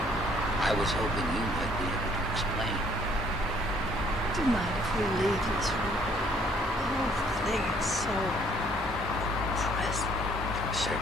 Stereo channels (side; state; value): both; normal; correlation 0.62